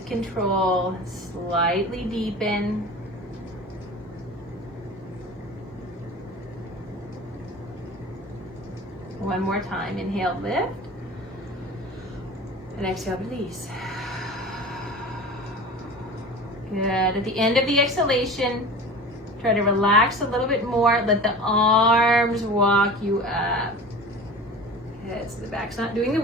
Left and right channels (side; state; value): both; normal; correlation 0.36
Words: control, slightly deepen. One more time, inhale, lift. And exhale, release. Good. At the end of the exhalation, try to relax a little bit more. Let the arms walk you up. Good. So the back's not doing the